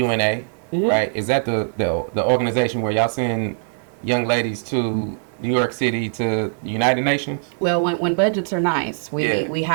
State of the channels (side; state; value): left; silent; 65 dB below the other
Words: right? Is that the organization where y'all send young ladies to New York City to the United Nations? Well, when budgets are nice, we